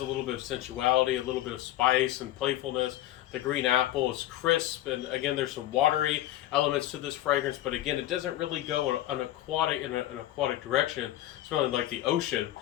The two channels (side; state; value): right; quieter; 14.2 dB